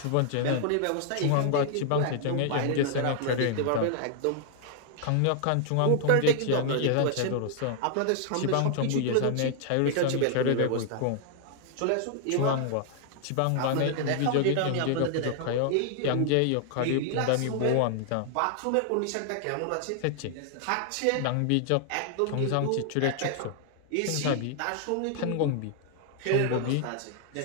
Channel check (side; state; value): both; different; correlation 0.00